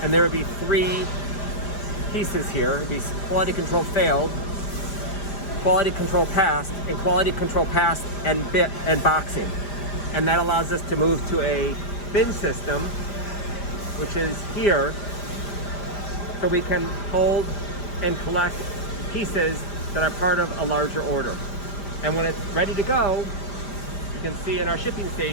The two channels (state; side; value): late; right; 5.2 ms